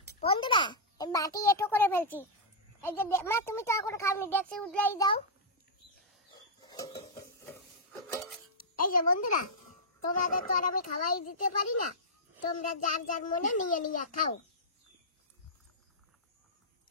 বন্ধুরা, বাটি এটো করে ফেলছি। এই যে মা তুমি তো এখন খাওনি, দেখছি উঠলাই দাও। এই যে বন্ধুরা, তোমাদের তো আর আমি খাওয়াই দিতে পারি না, তোমরা যার যার মনে নিয়ে নিয়ে খাও।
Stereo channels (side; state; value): both; normal; correlation -0.10